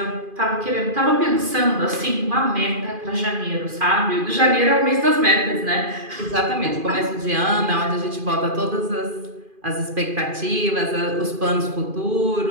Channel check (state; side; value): late; left; 2.5 ms